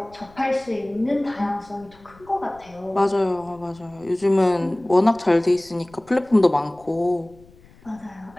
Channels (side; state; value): left; noise; rumble, 26 dB below the sound